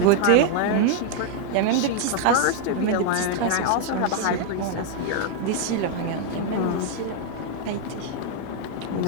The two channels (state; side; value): different; both; correlation 0.00